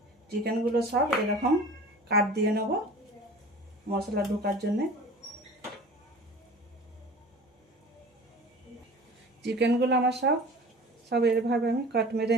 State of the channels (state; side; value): normal; both; correlation 0.40